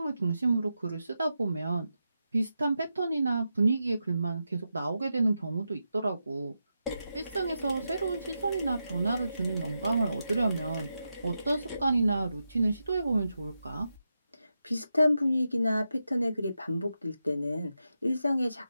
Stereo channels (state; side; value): inverted; both; correlation -0.88